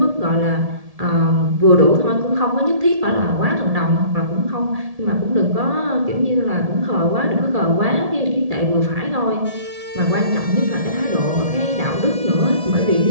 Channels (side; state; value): left; late; 1.7 ms